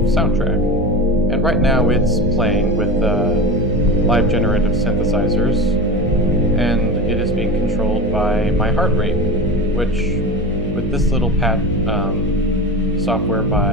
soundtrack. And right now it's playing with live generative synthesizers, and it is being controlled by my heart rate, which with this little pat software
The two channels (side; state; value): left; noise; hum, 16 dB below the sound